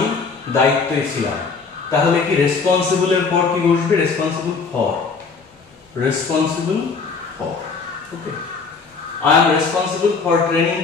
দায়িত্বে ছিলাম। তাহলে কি রেসপন্সিবল এর পর কি বসবে? Responsible for, responsible for. Okay, I am responsible for training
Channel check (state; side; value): quieter; right; 4.8 dB